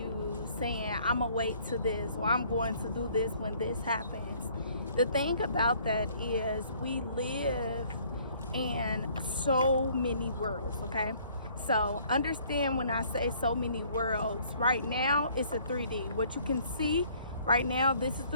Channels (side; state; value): both; inverted; correlation -0.60